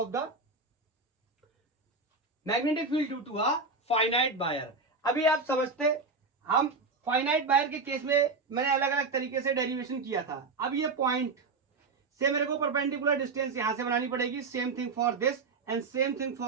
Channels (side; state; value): left; quieter; 4.0 dB